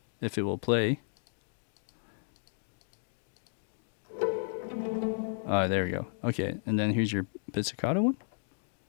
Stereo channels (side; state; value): right; silent; digital silence